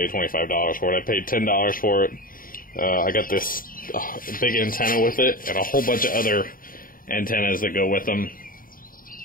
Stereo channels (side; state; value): right; late; 0.41 ms